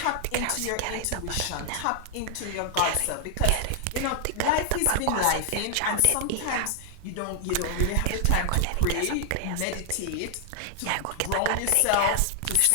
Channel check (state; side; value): different; both; correlation -0.01